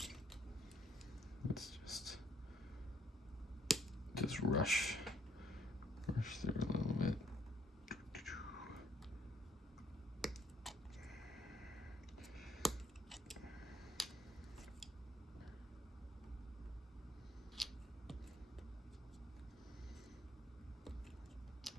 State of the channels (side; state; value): both; normal; correlation 0.66